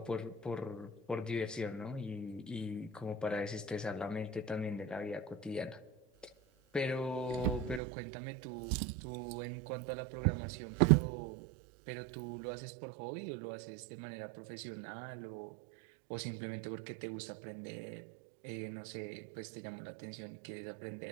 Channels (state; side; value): drops out; left; at 7.8 s